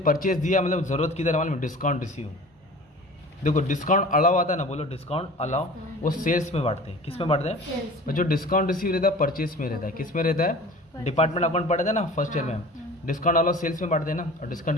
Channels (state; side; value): normal; both; correlation 0.42